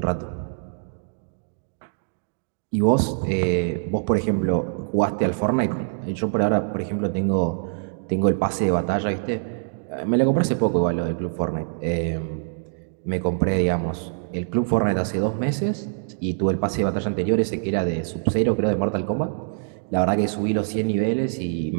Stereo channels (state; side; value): silent; left; digital silence